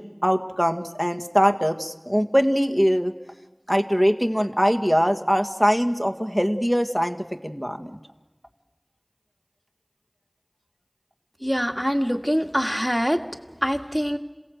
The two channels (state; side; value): identical; both; correlation 1.00